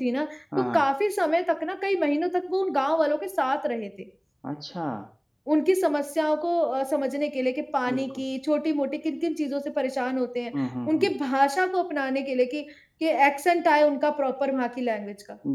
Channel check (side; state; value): both; identical; correlation 1.00